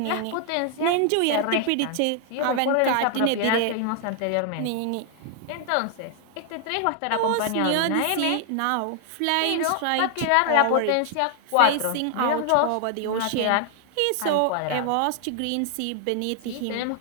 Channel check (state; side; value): different; both; correlation 0.00